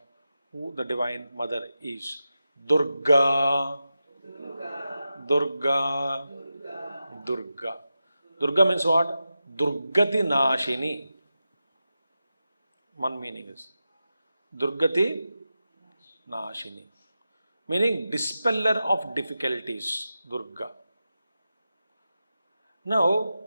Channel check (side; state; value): both; inverted; correlation -0.91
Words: who the Divine Mother is. Durga. Durga. Durga. Durga means what? Durgati Nashini. One meaning is Durgati Nashini. Meaning dispeller of difficulties. Durga. Now,